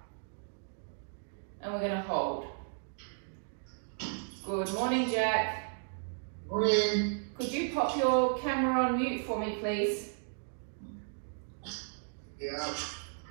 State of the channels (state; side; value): silent; left; digital silence